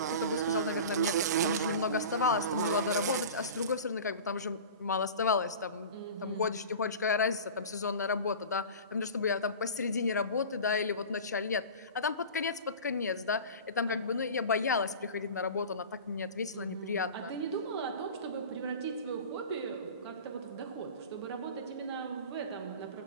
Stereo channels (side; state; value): both; inverted; correlation -0.36